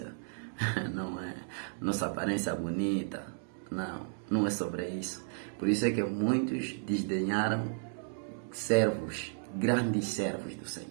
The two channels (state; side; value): silent; left; digital silence